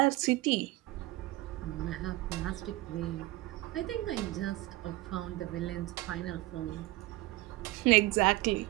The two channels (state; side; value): quieter; left; 18.9 dB